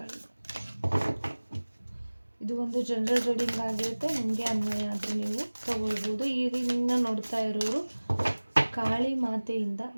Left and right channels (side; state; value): both; inverted; correlation -1.00